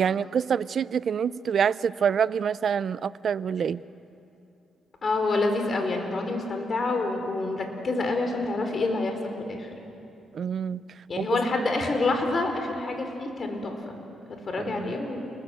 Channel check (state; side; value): normal; both; correlation 0.78